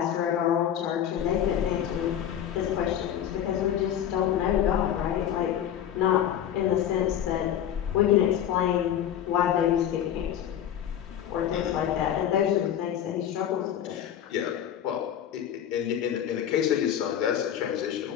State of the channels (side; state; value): right; quieter; 10.2 dB